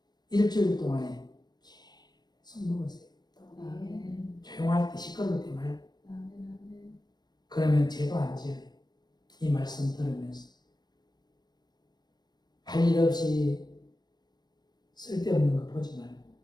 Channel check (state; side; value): late; right; 0.20 ms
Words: 일주일 동안에 계속 먹으세요. 조용할 때 시끄러울 때 말고 그러면 죄도 안 지어요. 이 말씀 들으면서 할 일 없이 쓸데없는 거 보지 말고